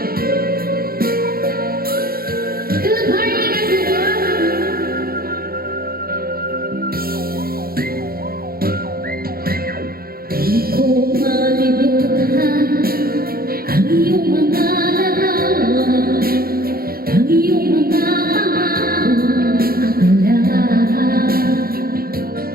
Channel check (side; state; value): left; late; 0.44 ms